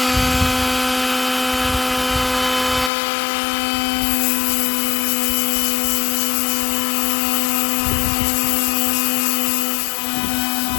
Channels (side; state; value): right; drops out; at 2.9 s